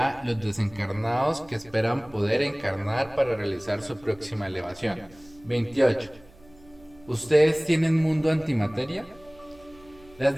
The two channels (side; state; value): right; noise; hum, 26 dB below the sound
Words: los desencarnados que esperan poder encarnar para realizar su próxima elevación. 28. ¿Ustedes tienen mundo antimateria?